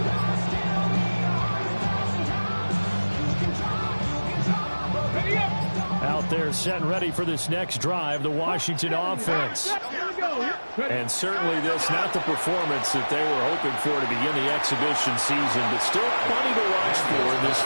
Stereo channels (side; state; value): both; inverted; correlation -1.00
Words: out there setting ready for this next drive, the Washington offense. And certainly this, not the performance that they were hoping for to begin the exhibition season, but still plenty to watch for in this